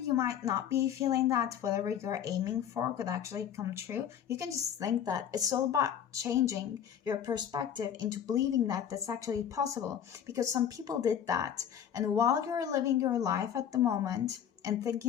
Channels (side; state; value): right; quieter; 9.0 dB